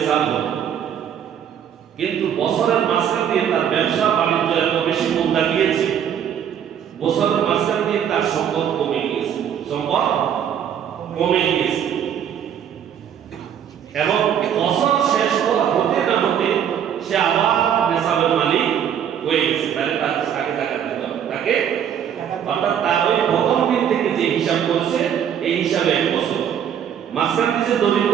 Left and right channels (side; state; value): left; quieter; 9.0 dB